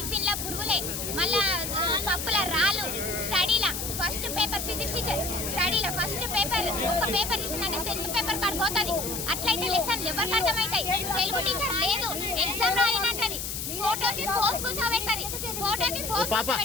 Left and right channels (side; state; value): left; noise; hiss, 4 dB below the sound